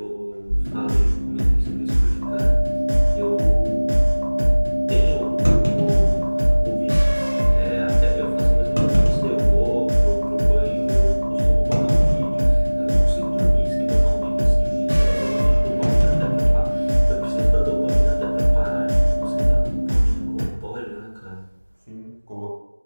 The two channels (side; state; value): both; inverted; correlation -1.00